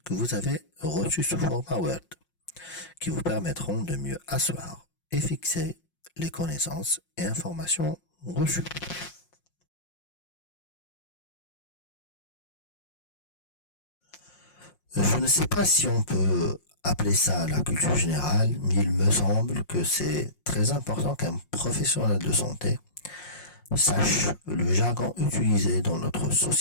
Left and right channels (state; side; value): late; right; 5.6 ms